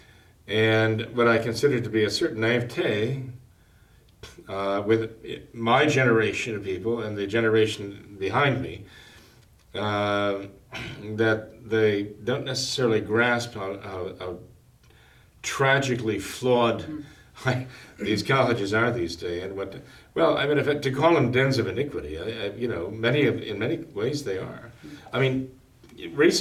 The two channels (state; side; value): identical; both; correlation 1.00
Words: and what I consider to be a certain naivete with my generation of people and the generation behind me, that they don't necessarily grasp how tragically flawed these colleges are these days, and to call them dens of iniquity, in many ways they are. I mean,